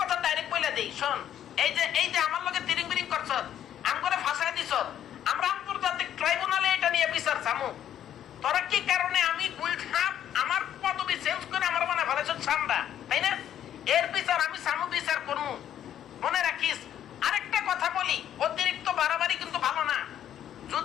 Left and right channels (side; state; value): right; quieter; 10.6 dB